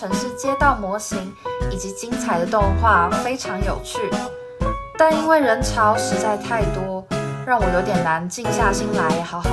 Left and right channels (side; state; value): both; identical; correlation 1.00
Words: 市街道模型以及精彩的动画非常有趣，但因为人潮实在太多，让我有点难静下心来好